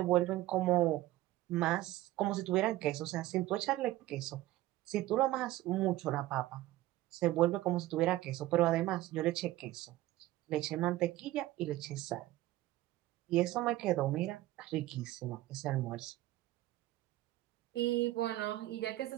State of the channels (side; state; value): left; quieter; 16.3 dB